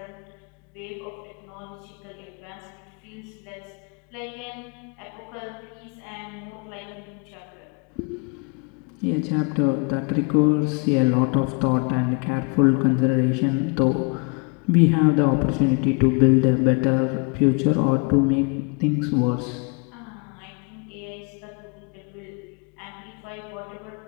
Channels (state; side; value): quieter; right; 34.0 dB